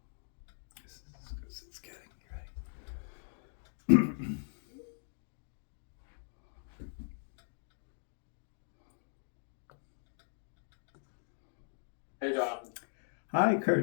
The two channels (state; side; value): silent; right; digital silence